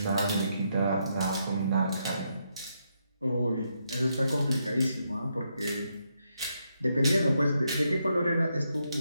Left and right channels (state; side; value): inverted; both; correlation -0.80